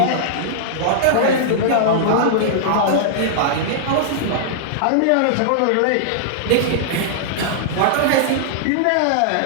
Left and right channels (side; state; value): both; different; correlation -0.02